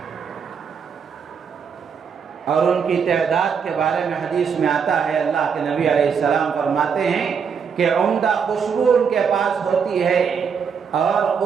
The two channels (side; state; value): left; quieter; 6.5 dB